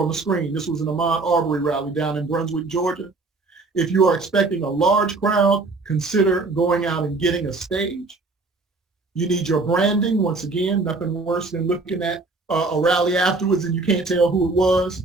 the screen. This was an Ahmaud Arbery rally down in Brunswick, Georgia. If you are expecting a large crowd, consider going out and getting a stage. You need your branding. Once again, nothing worse than looking at a rally afterwards and you can't tell who it was.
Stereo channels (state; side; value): quieter; left; 3.6 dB